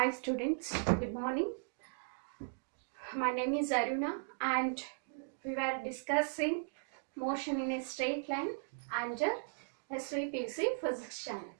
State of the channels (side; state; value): left; silent; digital silence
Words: students, good morning. My name is Aruna and we were discussing motion in a straight line under SVPC physics channel.